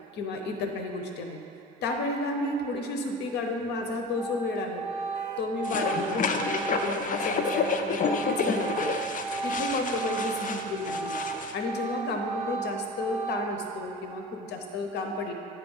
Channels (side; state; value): both; normal; correlation 0.33